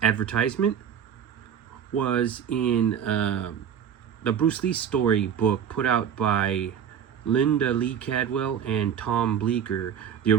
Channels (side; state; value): left; quieter; 8.6 dB